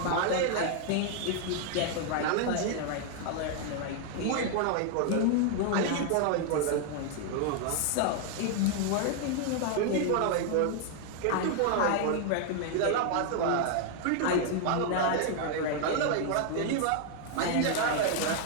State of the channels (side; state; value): both; different; correlation 0.00